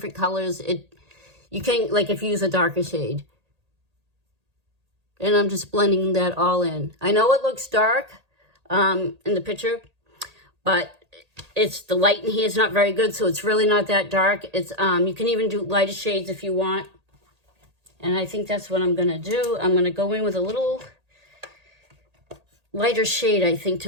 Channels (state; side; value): late; left; 1.8 ms